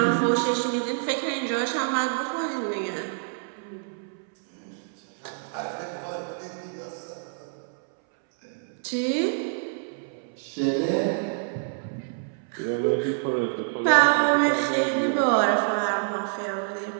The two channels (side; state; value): left; silent; 60 dB below the other